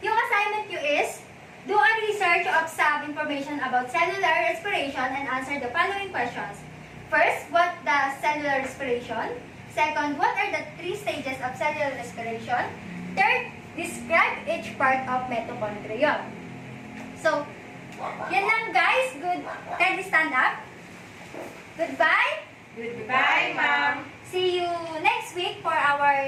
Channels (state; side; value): identical; both; correlation 1.00